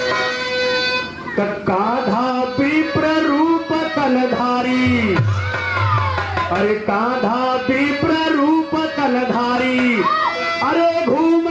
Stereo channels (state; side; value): identical; both; correlation 1.00